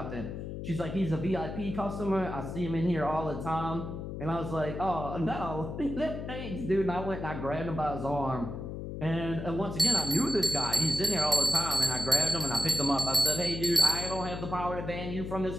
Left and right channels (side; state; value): left; noise; hum, 7 dB below the sound